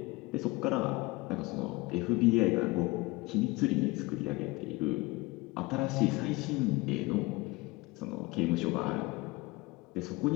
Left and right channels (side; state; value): right; quieter; 22.7 dB